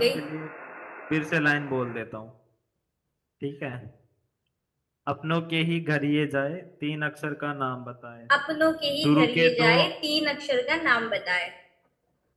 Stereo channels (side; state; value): both; identical; correlation 1.00